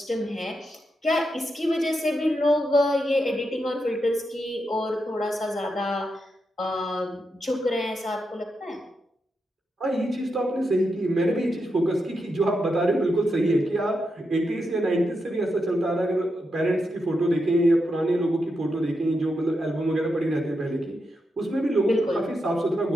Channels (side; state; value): both; normal; correlation 0.85